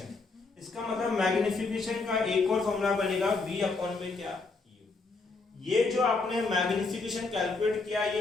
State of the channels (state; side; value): quieter; right; 3.8 dB